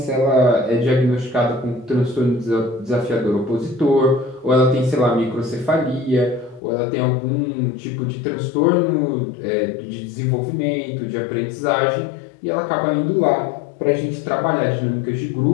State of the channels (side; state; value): right; drops out; at 6.6 s